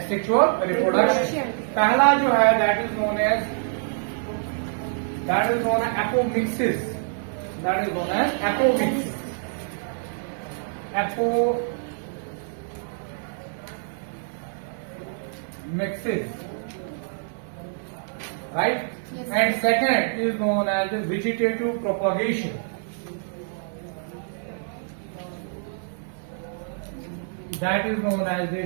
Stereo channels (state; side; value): silent; left; digital silence